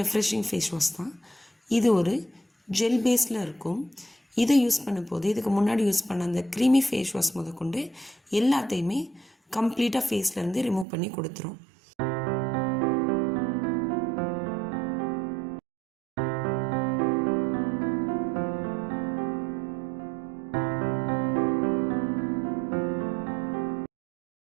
ரெஃப்ரெஷிங் ஃபேஸ் வாஷ் தான். இது ஒரு ஜெல் பேஸில் இருக்கும். இதை யூஸ் பண்ணும்போது இதுக்கு முன்னாடி யூஸ் பண்ண அந்த க்ரீமி ஃபேஸ் வாஷ் முதற்கொண்டு எல்லாத்தையுமே கம்ப்ளீட்டாக ஃபேஸ்லேருந்து ரிமூவ் பண்ணி கொடுத்துரும்.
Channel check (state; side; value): drops out; left; at 10.9 s